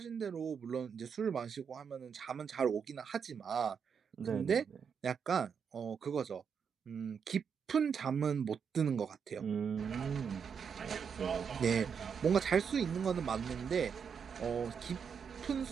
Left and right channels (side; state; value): left; quieter; 6.7 dB